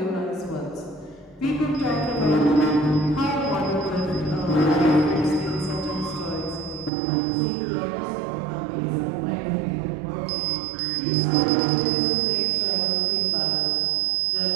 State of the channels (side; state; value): left; drops out; at 6.9 s